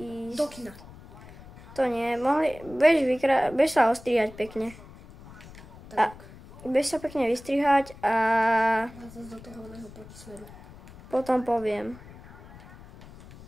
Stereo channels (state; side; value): noise; left; rumble, 19 dB below the sound